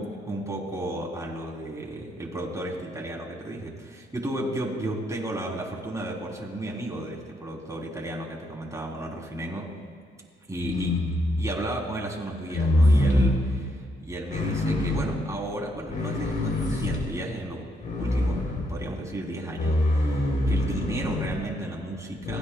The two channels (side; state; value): both; normal; correlation 0.75